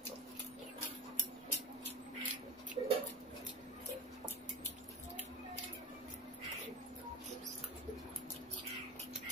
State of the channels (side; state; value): both; normal; correlation 0.31